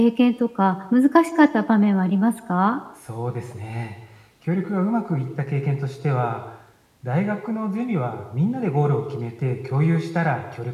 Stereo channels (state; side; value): identical; both; correlation 1.00